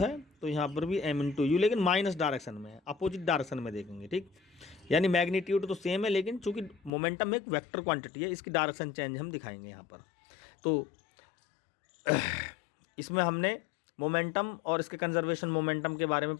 तो यहाँ पर भी m इंटू यू, लेकिन माइनस डायरेक्शन में है, अपोजिट डायरेक्शन में देखेंगे, ठीक। यानी मैग्नीट्यूड तो सेम है, लेकिन चूंकि मोमेंटम एक वेक्टर क्वांटिटी है, इसकी डायरेक्शन चेंज हम दिखाएंगे यहाँ पर। तो इसमें हमने मोमेंटम और इसके कंजर्वेशन मोमेंटम के बारे में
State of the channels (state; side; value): drops out; right; at 6.9 s